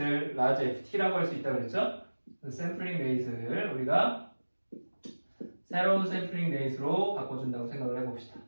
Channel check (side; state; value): both; inverted; correlation -1.00